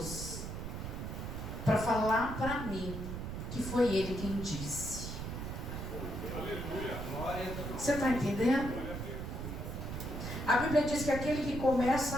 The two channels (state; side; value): noise; right; rumble, 6 dB below the sound